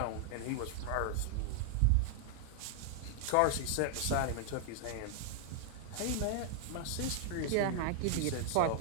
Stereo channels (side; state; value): both; different; correlation -0.01